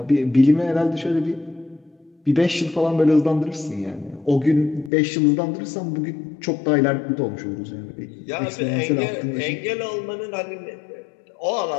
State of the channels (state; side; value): drops out; right; at 4.9 s